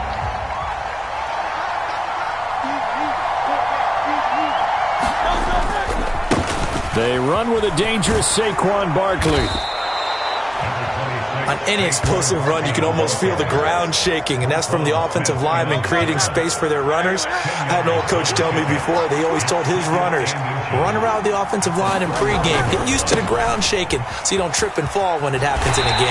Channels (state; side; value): identical; both; correlation 1.00